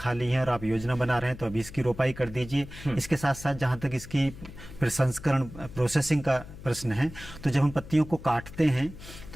हैं और आप योजना बना रहे हैं तो अभी इसकी रोपाई कर दीजिए। इसके साथ साथ जहाँ तक इसकी प्रसंस्करण प्रोसेसिंग का प्रश्न है, तो जब हम पत्तियों को काटते हैं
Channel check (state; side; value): noise; left; hum, 15 dB below the sound